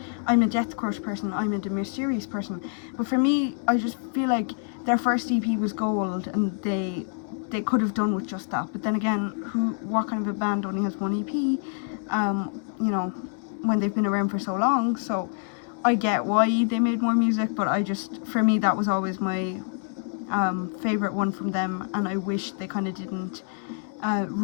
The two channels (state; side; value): silent; right; 58 dB below the other